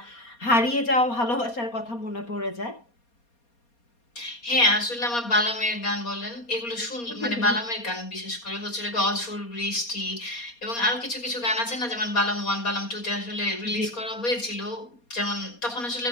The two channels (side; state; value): right; late; 4.2 ms